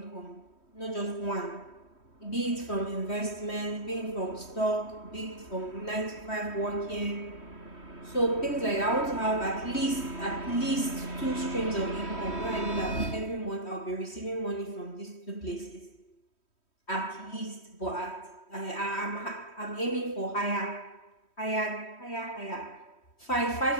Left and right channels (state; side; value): late; right; 3.1 ms